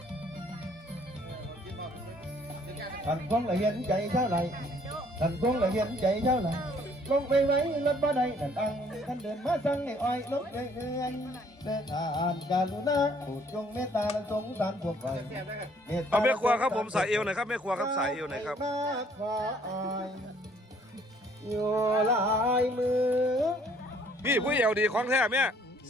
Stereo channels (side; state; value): both; normal; correlation 0.61